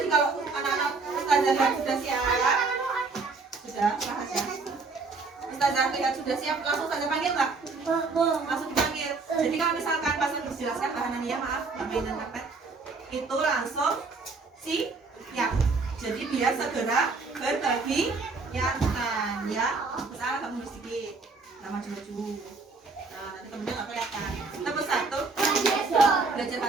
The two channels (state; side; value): quieter; left; 4.1 dB